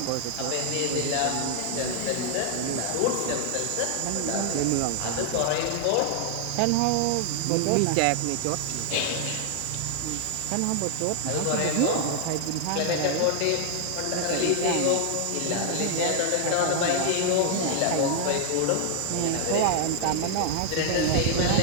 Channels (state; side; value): different; both; correlation 0.00